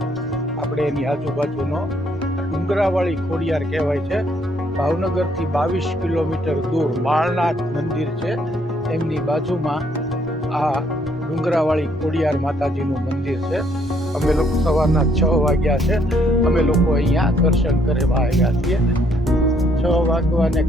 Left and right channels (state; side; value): normal; both; correlation 0.68